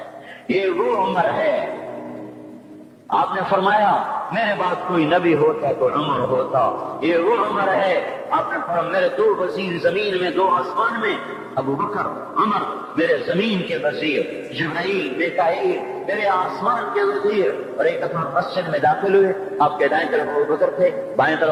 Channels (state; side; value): identical; both; correlation 1.00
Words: یہ وہ عمر ہے۔ آپ نے فرمایا میرے بعد کوئی نبی ہوتا تو عمر ہوتا، یہ وہ عمر ہے۔ آپ نے فرمایا میرے 2 وزیر زمین میں، 2 آسمان میں، ابو بکر، عمر، میرے زمین کے وزیر، جبرائیل، میکائیل، میرے آسمان کے وزیر۔ اور ایک دفعہ مسجد میں داخل ہوئے، آپ کے دائیں طرف ابو بکر تھے، بائیں